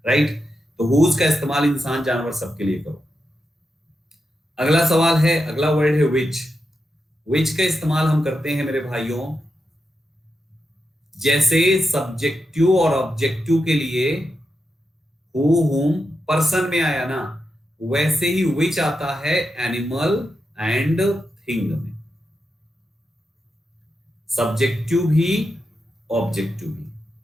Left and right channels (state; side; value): normal; both; correlation 0.87